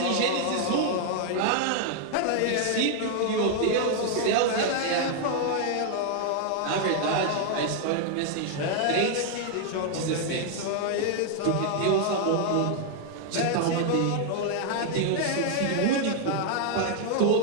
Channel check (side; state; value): both; different; correlation 0.00